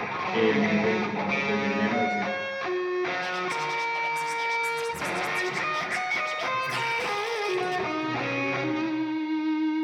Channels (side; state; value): both; identical; correlation 1.00